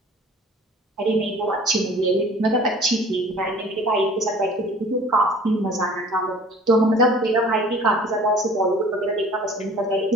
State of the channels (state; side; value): normal; both; correlation 0.48